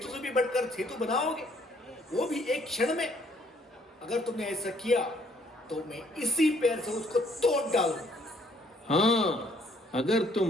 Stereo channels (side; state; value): both; normal; correlation 0.64